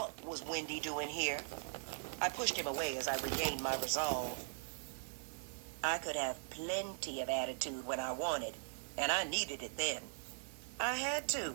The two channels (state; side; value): silent; left; digital silence